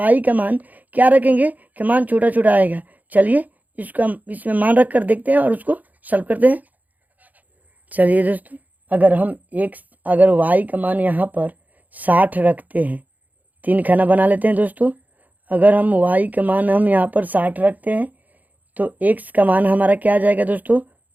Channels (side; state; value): left; late; 0.080 ms